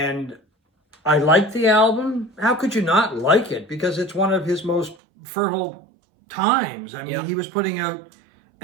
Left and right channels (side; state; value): left; drops out; at 5.0 s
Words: I like the album. How could you not like it? Because it's one of his most fertile times. I mean, Yeah. he was putting out